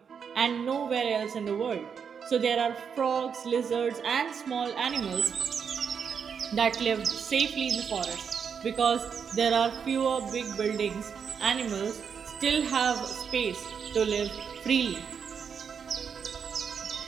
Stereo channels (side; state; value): left; quieter; 6.8 dB